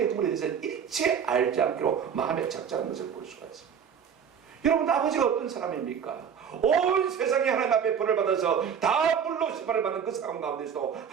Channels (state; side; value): quieter; left; 7.6 dB